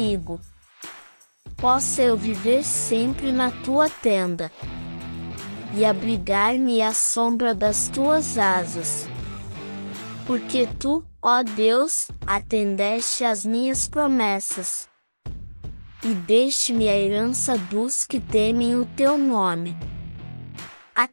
Possa eu viver sempre na tua tenda e abrigar-me à sombra das tuas asas. Porque tu, ó Deus, atendeste às minhas promessas, e deste-me a herança dos que temem o teu nome.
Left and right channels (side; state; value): both; inverted; correlation -1.00